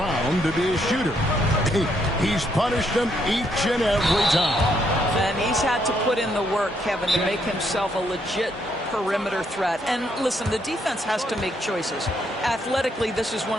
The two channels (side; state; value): both; normal; correlation 0.73